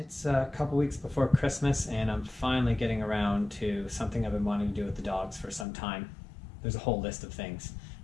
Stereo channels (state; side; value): drops out; right; at 5.7 s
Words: It's a couple weeks before Christmas and I'm finally getting around to something I've been wanting to do with the dogs for some time. There's a whole list of things.